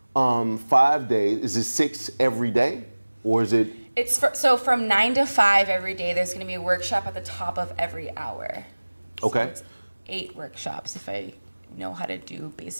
5 days. Is it 6 every day, or is it? So from 9 to 5 every day. There's going to be a workshop at the top of every hour. Okay. So it's 8 workshops if I know how to do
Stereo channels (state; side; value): inverted; both; correlation -1.00